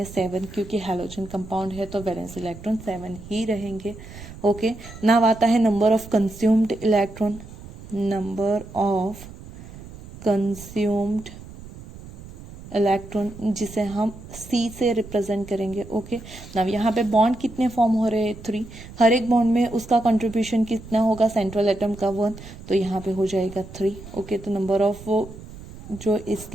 7, क्योंकि हैलोजन कंपाउंड है तो वैलेंस इलेक्ट्रॉन 7 ही रहेंगे। ओके नाउ आता है number of consumed electron, number of consumed electron जिसे हम C से रिप्रेजेंट करेंगे। ओके नाउ यहाँ पे बॉन्ड कितने फॉर्म हो रहे हैं, 3। हर एक बॉन्ड में उसका कंट्रीब्यूशन कितना होगा, सेंट्रल एटम का 1, तो यहाँ पे हो जाएगा 3। ओके तो नंबर ऑफ वो जो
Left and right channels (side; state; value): right; noise; rumble, 16 dB below the sound